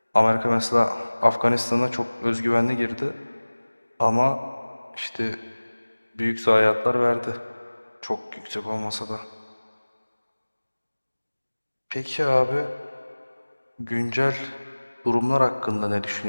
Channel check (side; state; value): both; inverted; correlation -1.00